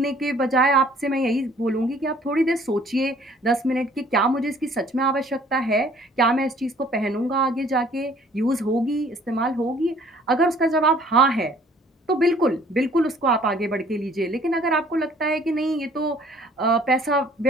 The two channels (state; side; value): normal; both; correlation 0.56